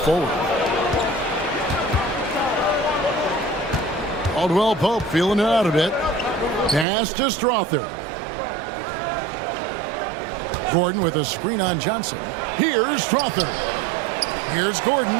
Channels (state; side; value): drops out; left; at 6.9 s